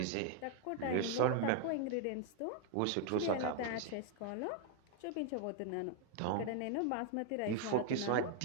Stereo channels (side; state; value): both; different; correlation 0.00